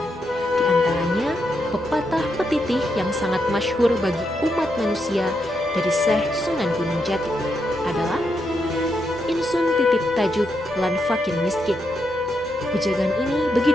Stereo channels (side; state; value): both; normal; correlation 0.82